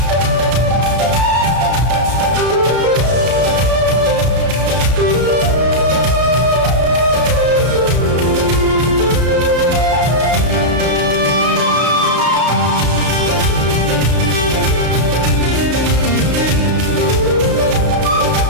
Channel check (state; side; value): late; left; 33 ms